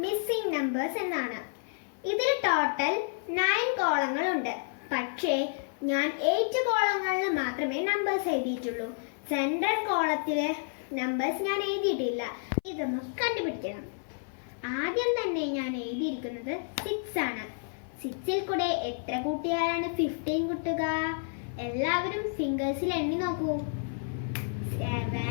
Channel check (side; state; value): right; silent; 58 dB below the other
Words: missing numbers എന്നാണ്. ഇതിൽ ടോട്ടൽ 9 കോളങ്ങൾ ഉണ്ട്. പക്ഷേ ഞാൻ 8 കോളങ്ങളിൽ മാത്രമേ നമ്പേഴ്സ് എഴുതിയിട്ടുള്ളൂ. സെൻട്രൽ കോളത്തിലെ നമ്പേഴ്സ് ഞാൻ എഴുതിയിട്ടില്ല. ഇതൊന്ന് കണ്ടുപിടിക്കണം. ആദ്യം തന്നെ ഞാൻ എഴുതിയിരിക്കുന്നത് 6 ആണ്. 6ൽ കൂടെ എത്ര കൂട്ടിയാലാണ് 15 കിട്ടുക? എല്ലാവരും ഫിംഗേഴ്സിൽ എണ്ണി നോക്കൂ.